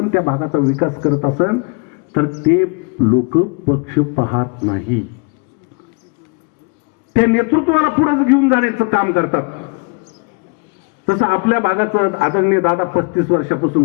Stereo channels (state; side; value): quieter; right; 34.5 dB